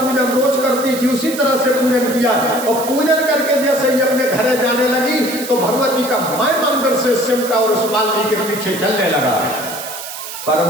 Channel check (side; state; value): right; noise; hiss, 10 dB below the sound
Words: रोज करती थी उसी तरह से पूजन किया, और पूजन करके जैसे ही अपने घर जाने लगी तो भगवती का माय मंदिर से सिमटा और उस माली के पीछे चलने लगा। पर